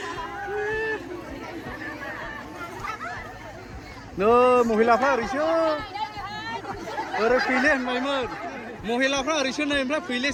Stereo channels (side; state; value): both; identical; correlation 1.00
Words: नो महिलाफ्रा ओरैसो ओरै फैले होनबायमोन महिलाफ्रा ओरैसो नै ओमफ्राय